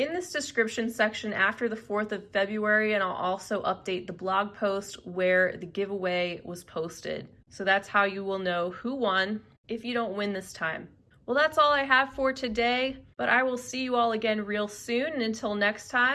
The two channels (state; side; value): identical; both; correlation 1.00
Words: this description section after the 4th of February, and I'll also update the blog post where the giveaway was posted. So that's how you will know who won if you don't win this time. Well, that's all I have for today, but I will see you all again real soon, and until next